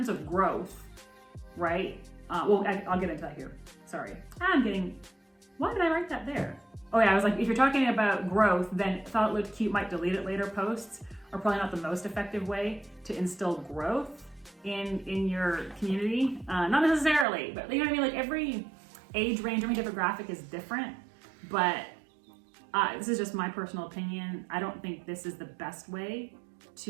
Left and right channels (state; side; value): drops out; left; at 17.2 s